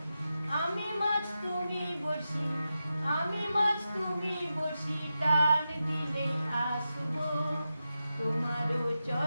আমি মাছ তুমি বসি, আমি মাছ তুমি বসি, টান দিলে আসবো তোমারও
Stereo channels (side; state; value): both; inverted; correlation -0.90